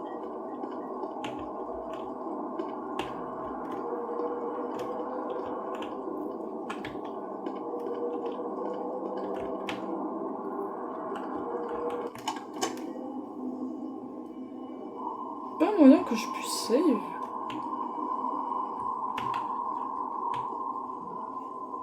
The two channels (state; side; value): identical; both; correlation 1.00